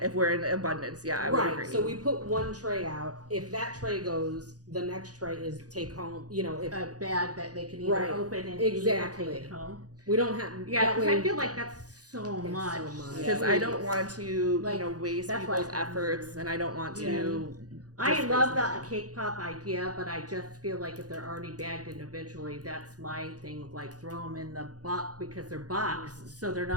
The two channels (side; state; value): left; late; 0.68 ms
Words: if we're in abundance, yeah, I would Right. agree. So we put one tray out. If that tray goes, the next tray is take home. You know, if A bag that they can either Right. open and Exactly. eat or take it home. we don't have. Yeah, that because way, I feel like that's so It's much. so much. because I don't want to Like, waste that's why people's I- efforts, and I don't want to I Just love basically. the cake pop idea, but I just feel like if they're already bagged individually, that's my thing. Like throw them in the box because they're boxed, so they're